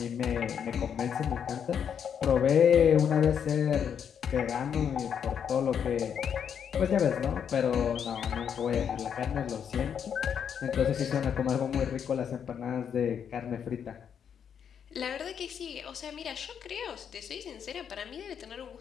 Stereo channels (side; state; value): right; quieter; 7.9 dB